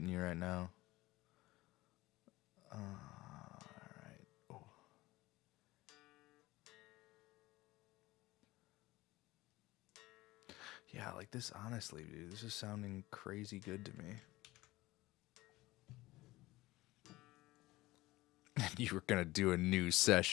you right now. All right. Oh. Yeah, like this, honestly, dude, this is sounding crazy good to me. You were gonna do a new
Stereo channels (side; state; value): right; quieter; 19.0 dB